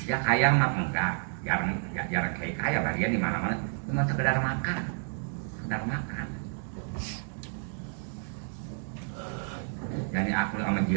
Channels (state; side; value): silent; left; 58 dB below the other